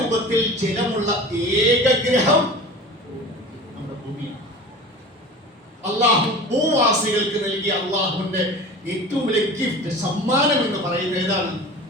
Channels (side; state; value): both; normal; correlation 0.37